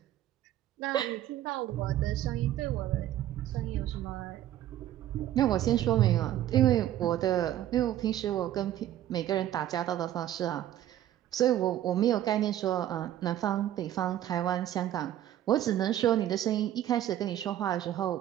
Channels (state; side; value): quieter; left; 12.4 dB